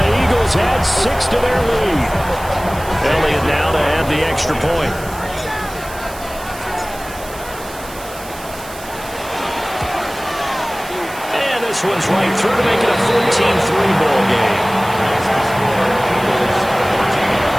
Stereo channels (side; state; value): right; noise; hiss, 16 dB below the sound